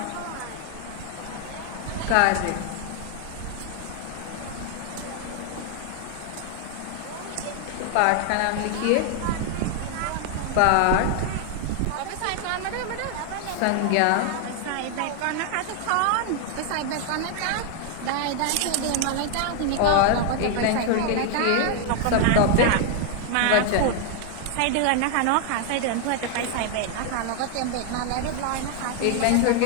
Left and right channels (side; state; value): both; different; correlation 0.00